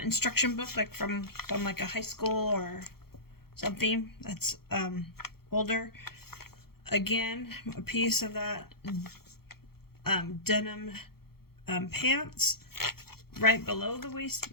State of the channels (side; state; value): right; late; 0.95 ms